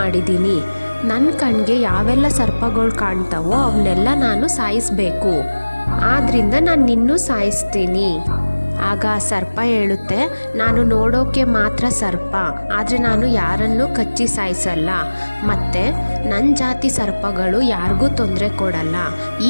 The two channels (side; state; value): both; inverted; correlation -1.00